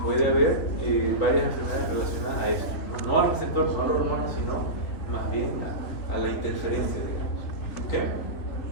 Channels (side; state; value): right; late; 3.4 ms